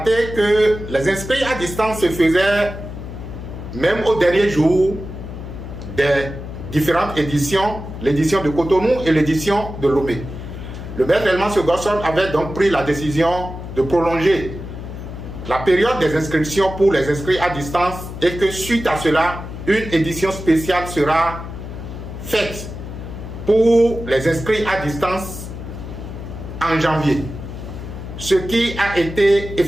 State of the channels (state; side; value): noise; left; hum, 10 dB below the sound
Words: que les inscrits à distance se faisaient même au dernier jour des différentes éditions, l'édition de Cotonou et l'édition de Lomé. Le maître Elman Gosson avait donc pris la décision de prolonger la période des inscriptions pour les inscrits à distance et que suite à cela, une édition spéciale sera faite pour les inscrits à distance en janvier, ce qui a été